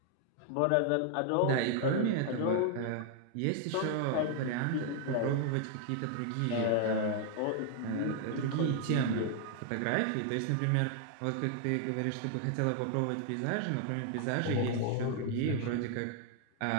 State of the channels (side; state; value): both; different; correlation 0.00